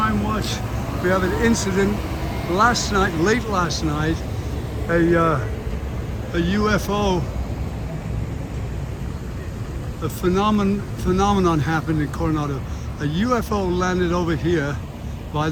Watch. We have an incident last night, late last night. A UFO, a phenomenon happened in Coronado. A UFO landed over here by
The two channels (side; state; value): both; identical; correlation 1.00